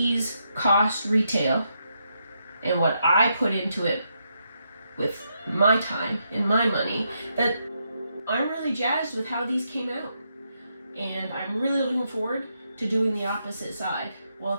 cost retail and what I put into it with my time and my money, that I'm really jazzed with how these came out. And I'm really looking forward to doing the opposite side while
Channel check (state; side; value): inverted; both; correlation -0.80